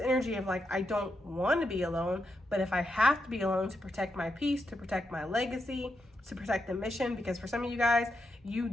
of like, I don't want to be alone, but if I have to be alone to protect my peace, to protect my legacy, to protect the mission, because for some of you guys, you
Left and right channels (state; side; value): normal; both; correlation 0.85